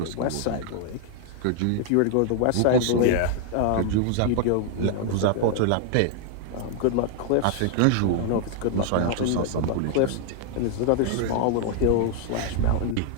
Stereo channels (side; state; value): both; different; correlation 0.00